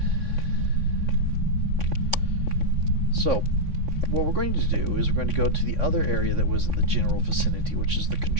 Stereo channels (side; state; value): left; late; 3.6 ms